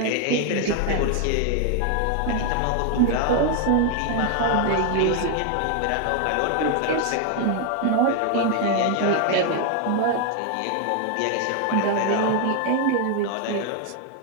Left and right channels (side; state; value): both; different; correlation 0.00